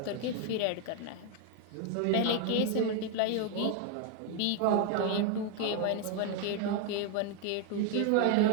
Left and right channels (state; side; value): different; both; correlation 0.01